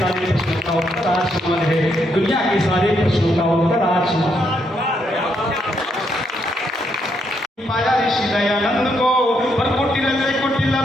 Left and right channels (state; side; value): normal; both; correlation 0.76